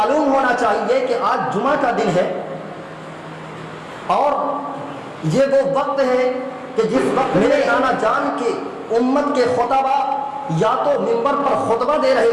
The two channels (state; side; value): identical; both; correlation 1.00